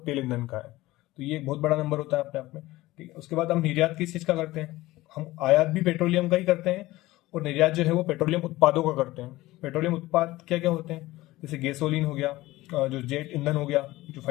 तेल ईंधन का है। तो ये एक बहुत बड़ा नंबर होता है अपने आप में। ठीक है, उसके बाद हम निर्यात किस चीज का करते हैं, हम आयात भी पेट्रोलियम का ही करते हैं और निर्यात जो है वो पेट्रोलियम उत्पादों का करते हैं। पेट्रोलियम उत्पाद क्या क्या होते हैं, जैसे गैसोलीन हो गया, जो जेट ईंधन हो गया जो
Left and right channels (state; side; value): quieter; right; 18.2 dB